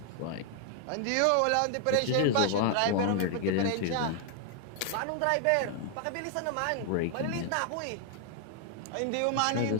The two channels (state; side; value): different; both; correlation 0.00